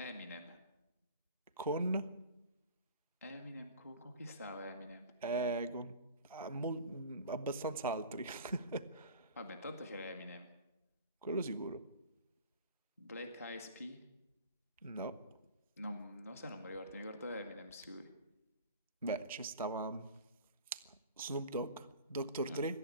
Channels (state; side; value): inverted; both; correlation -0.42